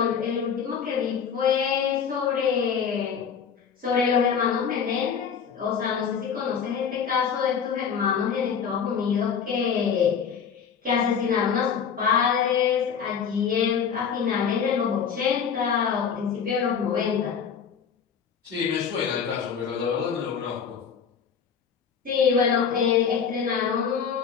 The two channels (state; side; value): quieter; right; 7.0 dB